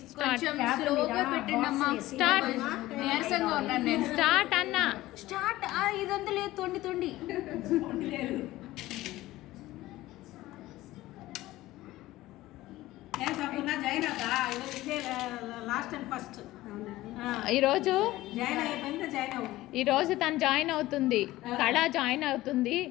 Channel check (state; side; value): quieter; right; 16.9 dB